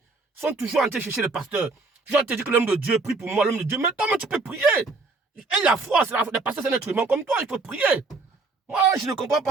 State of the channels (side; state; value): left; quieter; 3.7 dB